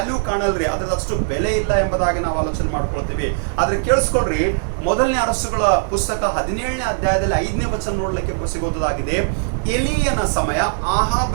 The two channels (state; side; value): silent; left; digital silence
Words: ಕಾಣಲ್ರಿ, ಅದ್ರದ್ದು ಅಷ್ಟು ಬೆಲೆ ಇಲ್ಲ ಎಂಬುದಾಗಿ ನಾವು ಆಲೋಚನೆ ಮಾಡ್ಕೊಳ್ತೀವಿ। ಆದ್ರೆ ಕೇಳಿಸ್ಕೊಳ್ರಿ, ಮೊದಲನೇ ಅರಸುಗಳ ಪುಸ್ತಕ 17ನೇ ಅಧ್ಯಾಯದಲ್ಲಿ 5ನೇ ವಚನ ನೋಡ್ಲಿಕ್ಕೆ ಸಿಗೋದಾಗಿದೆ। ಎಲಿಯನ ಸಮಯ,